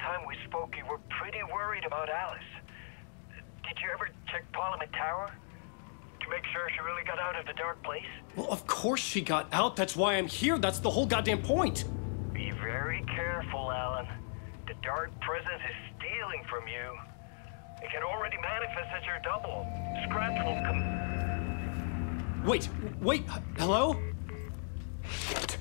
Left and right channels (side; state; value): right; silent; digital silence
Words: we spoke, you were pretty worried about Alice. Did you ever check Parliament Tower? To make sure she really got out of the dark place? Well, of course she got out. That's why I'm here. That's the whole goddamn point. Be very careful, Alan. The dark presence is stealing from you. It can already manifest as your double. Scratch will come... Wait, hello? Shit.